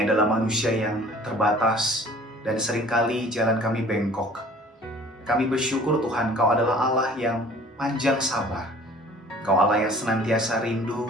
adalah manusia yang terbatas dan seringkali jalan kami bengkok. Kami bersyukur Tuhan, Kau adalah Allah yang panjang sabar. Kau Allah yang senantiasa rindu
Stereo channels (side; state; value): both; normal; correlation 0.49